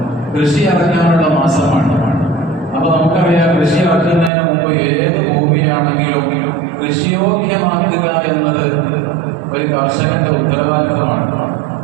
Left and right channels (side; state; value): left; drops out; at 4.3 s